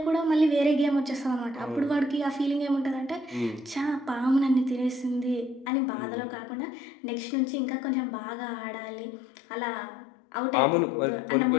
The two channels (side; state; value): right; drops out; at 5.7 s